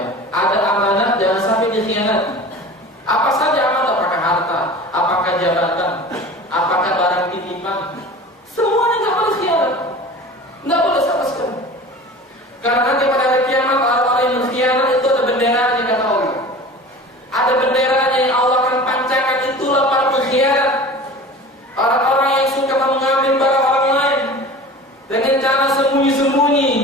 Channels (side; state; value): both; normal; correlation 0.38